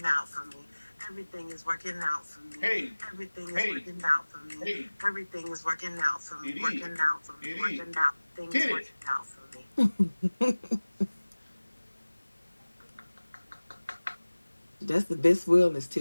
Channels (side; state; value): both; inverted; correlation -1.00